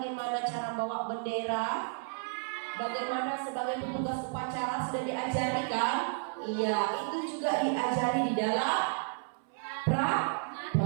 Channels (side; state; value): left; silent; 56 dB below the other